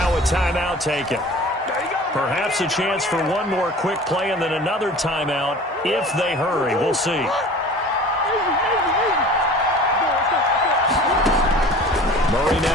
a timeout taken. Perhaps a chance for one more quick play and then another timeout if they hurry. We'll see. Murray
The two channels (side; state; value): both; normal; correlation 0.42